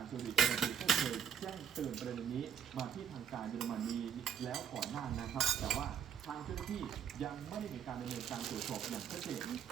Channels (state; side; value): quieter; left; 8.4 dB